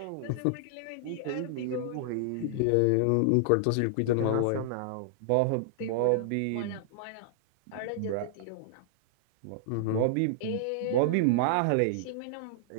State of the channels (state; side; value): different; both; correlation -0.01